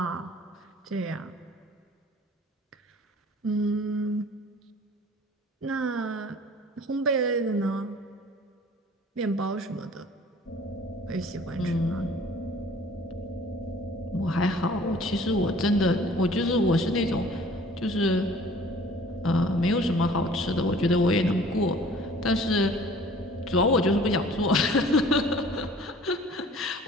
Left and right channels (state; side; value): normal; both; correlation 0.50